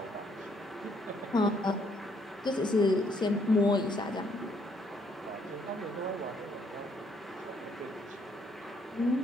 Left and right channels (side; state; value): both; normal; correlation 0.69